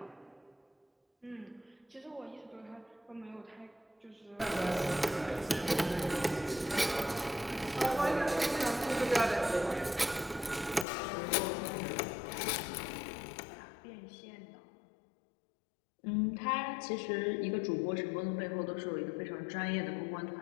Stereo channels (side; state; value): right; drops out; at 10.9 s